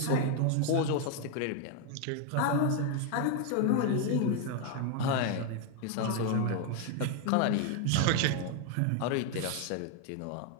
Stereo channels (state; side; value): different; both; correlation 0.01